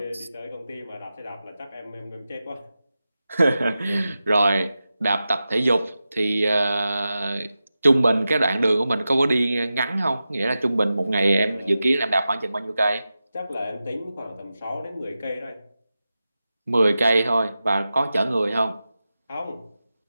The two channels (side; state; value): both; inverted; correlation -0.93